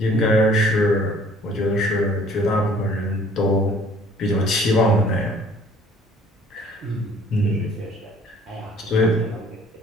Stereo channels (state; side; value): normal; both; correlation 0.55